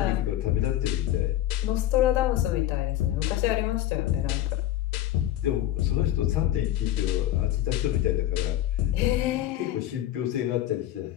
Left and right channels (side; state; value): right; quieter; 13.2 dB